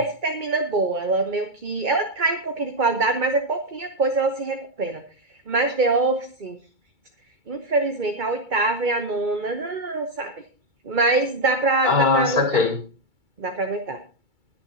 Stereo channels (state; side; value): late; left; 2.3 ms